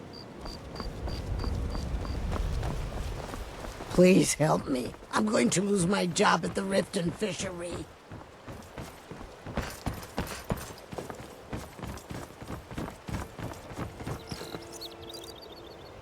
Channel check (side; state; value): both; identical; correlation 1.00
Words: Please help me. I'm going to lose my job at the Riften Fishery.